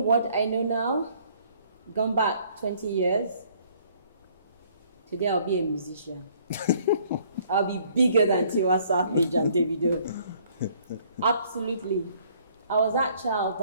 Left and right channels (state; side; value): inverted; both; correlation -0.61